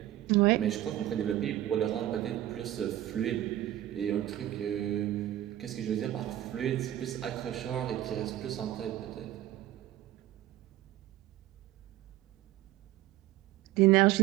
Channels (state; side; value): quieter; left; 13.7 dB